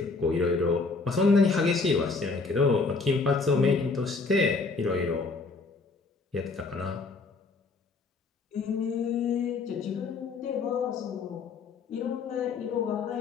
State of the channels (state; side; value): quieter; right; 4.2 dB